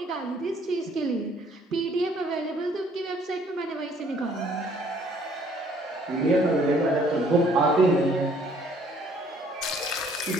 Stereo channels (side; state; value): both; normal; correlation 0.61